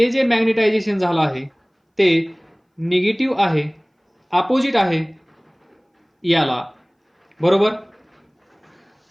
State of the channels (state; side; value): identical; both; correlation 1.00